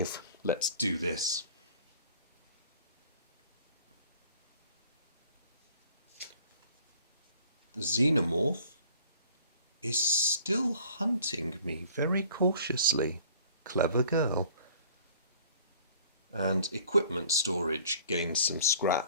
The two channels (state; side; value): inverted; both; correlation -0.52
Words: Let's do this. The Xenomorph is still hunting me very cautiously. Clever girl. And equipment storage gains some